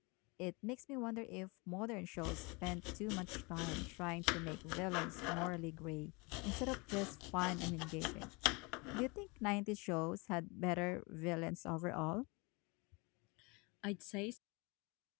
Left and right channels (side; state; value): right; quieter; 28.1 dB